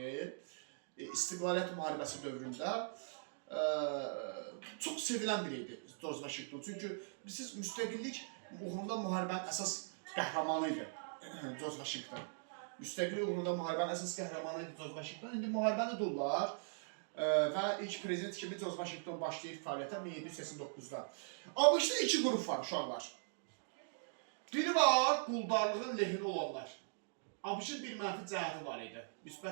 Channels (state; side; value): silent; left; digital silence